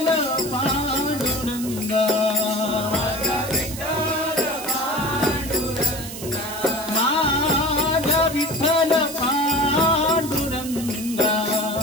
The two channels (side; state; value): right; noise; hiss, 10 dB below the sound